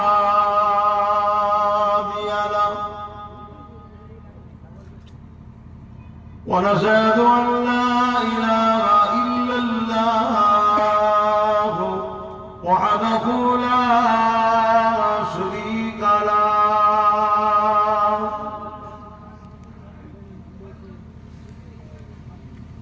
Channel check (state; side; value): identical; both; correlation 1.00